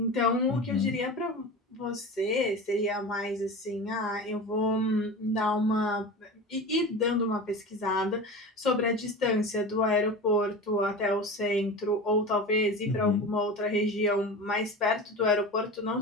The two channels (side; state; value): both; normal; correlation 0.31